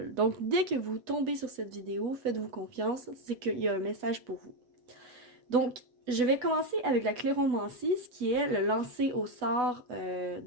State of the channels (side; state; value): left; late; 8.1 ms